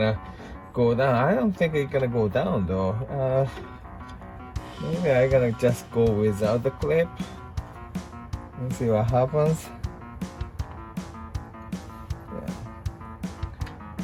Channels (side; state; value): both; identical; correlation 1.00